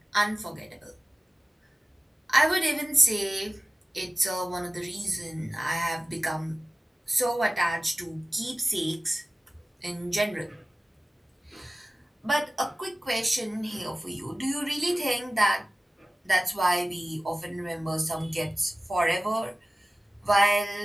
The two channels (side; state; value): both; normal; correlation 0.97